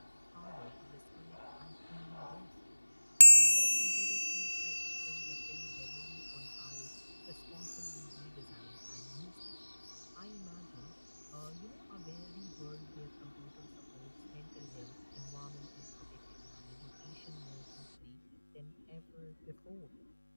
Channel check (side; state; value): both; inverted; correlation -1.00